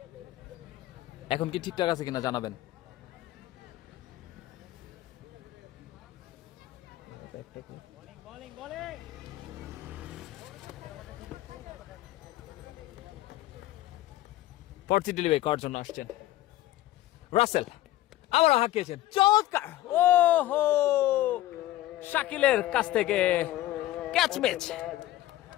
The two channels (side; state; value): right; quieter; 15.3 dB